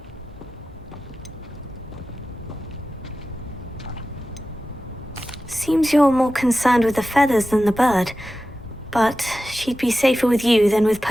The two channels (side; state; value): left; noise; hum, 26 dB below the sound